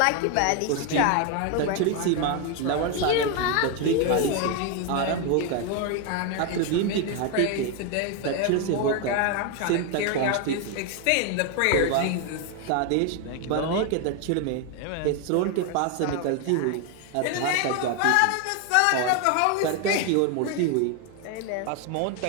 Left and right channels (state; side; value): different; both; correlation 0.01